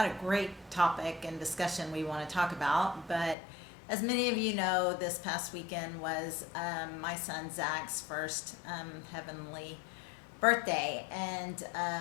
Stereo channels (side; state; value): right; drops out; at 3.4 s